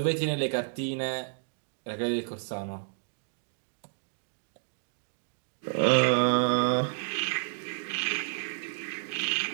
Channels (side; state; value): left; silent; digital silence